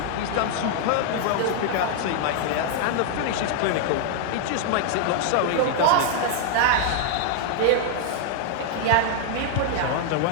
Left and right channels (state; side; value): different; both; correlation -0.01